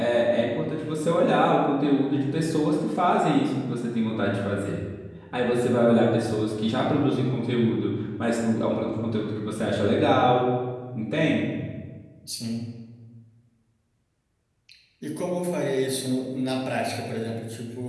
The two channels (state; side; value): identical; both; correlation 1.00